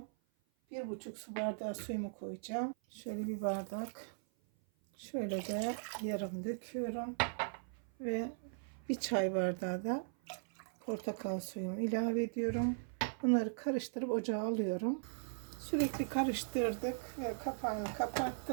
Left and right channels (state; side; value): silent; left; 52 dB below the other